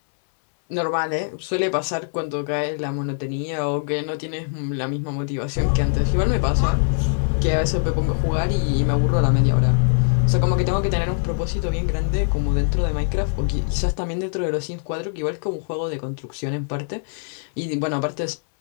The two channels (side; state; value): right; silent; 64 dB below the other